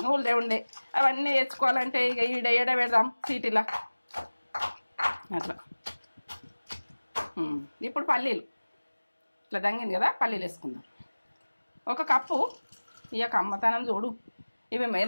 ఉండే, అవన్నీ తెచ్చుకోవాలంటే ఇక ఈడ పెడదాం సిటీలో అట్లా. ఇప్పుడు పల్లీలు ఇట్లా దంగింది కదా, పల్లీలు వేసుకుందాం. 1 కప్పు. ఇక అమ్మతనం చూడు, ఇవి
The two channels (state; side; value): inverted; both; correlation -1.00